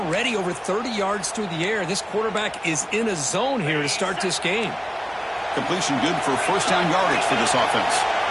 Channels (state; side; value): identical; both; correlation 1.00